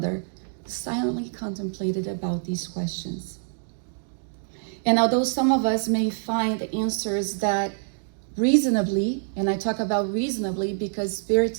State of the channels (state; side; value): silent; left; digital silence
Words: silently contemplated about these questions. And although some of us may find answers that reasonably, and I talk about reasonably because